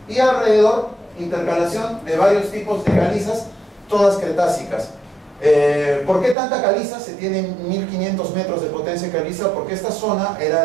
y alrededor intercalación de varios tipos de calizas, todas cretácicas. ¿Por qué tanta caliza? Se tienen 1500 metros de potencia de caliza, porque esta zona era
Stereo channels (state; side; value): drops out; left; at 6.4 s